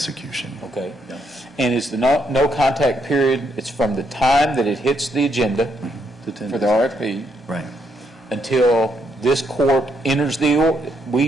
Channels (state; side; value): normal; both; correlation 0.76